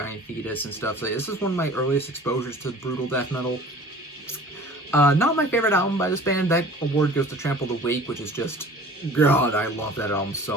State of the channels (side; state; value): both; normal; correlation 0.45